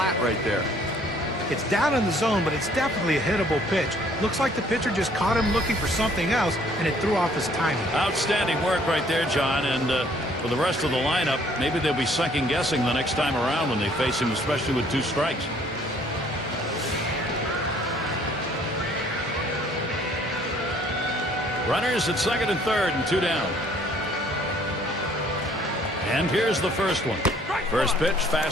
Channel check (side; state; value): both; normal; correlation 0.60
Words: right there. It's down in the zone, but it's definitely a hittable pitch. Looks like the pitcher just caught him looking for something else, and it threw off his timing. Outstanding work right there, John. And for the rest of the lineup, maybe they'll be second-guessing the next time around when they face him, especially with 2 strikes. Runners at second and third and 2 down. And here's the first one. First pitch,